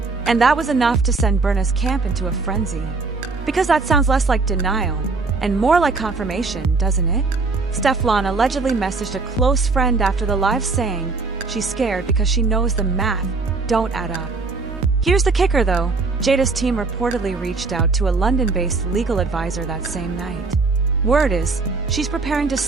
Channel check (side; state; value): left; quieter; 4.0 dB